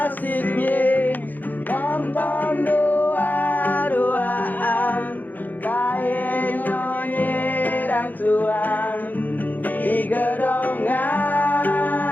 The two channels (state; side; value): late; right; 0.084 ms